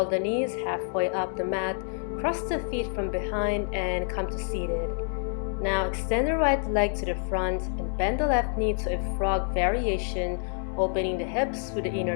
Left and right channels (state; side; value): silent; right; 57 dB below the other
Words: the knees halfway up the mat. Cross the feet from behind and come to seated. Now extend the right leg to the front and bend the left knee to a frog variation, opening the hips with the